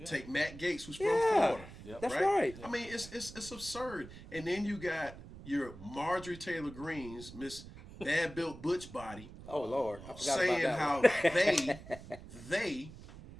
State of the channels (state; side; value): noise; right; rumble, 15 dB below the sound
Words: Take Matt Gaetz, who's from Florida. Yep. That's right. I mean, it's absurd. And then you got your Marjorie Taylor Greene's Miss Bad Built Butch Body. Oh Lord, I forgot saying about that how they